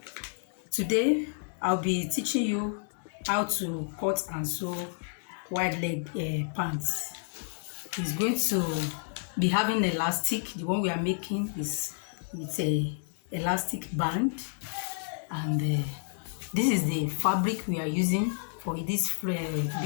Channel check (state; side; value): silent; right; digital silence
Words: Today I'll be teaching you how to cut and sew wide leg pants. It's going to be having elastic. The one we are making is with a elastic band, and this is the fabric we are using for this